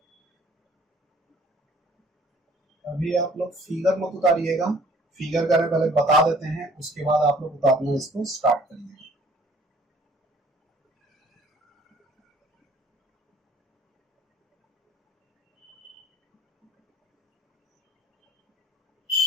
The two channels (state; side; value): normal; both; correlation 0.55